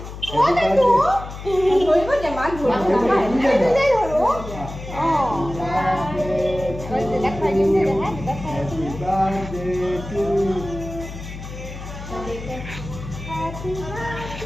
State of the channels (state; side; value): noise; left; hum, 11 dB below the sound